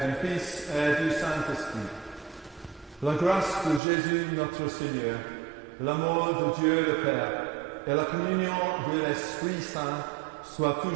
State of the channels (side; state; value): left; drops out; at 3.8 s